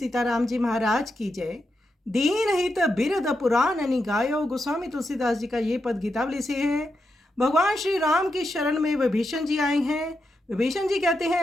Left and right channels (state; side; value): normal; both; correlation 0.86